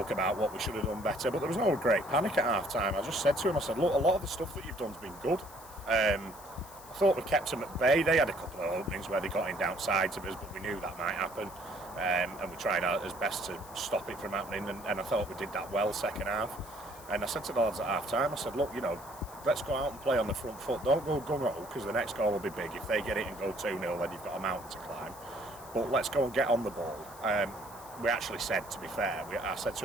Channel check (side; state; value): left; noise; hiss, 19 dB below the sound